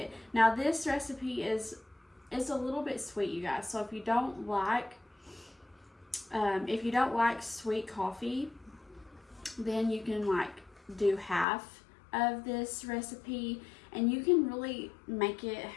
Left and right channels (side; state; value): right; drops out; at 11.5 s